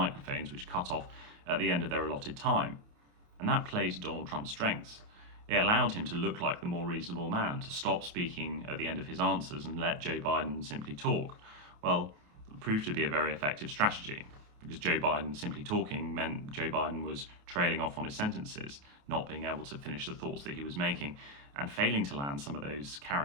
which cut off at the end of their allotted time. And that played to Donald Trump's strengths. It allowed him to look like the more reasonable man, to stop speaking at the end of his answers and let Joe Biden simply talk. Well, it proved to be a very effective strategy, because Joe Biden simply talking meant Joe Biden was trailing off on his sentences, not being able to finish the thoughts that he was making, and failing to land some of those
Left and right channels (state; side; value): late; left; 28 ms